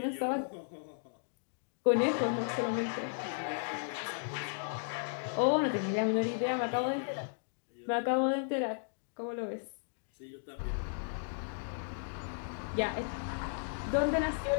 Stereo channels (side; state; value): right; silent; digital silence